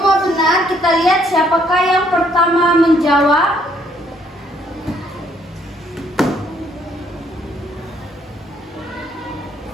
benar. Kita lihat siapakah yang pertama menjawab.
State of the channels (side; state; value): both; normal; correlation 0.67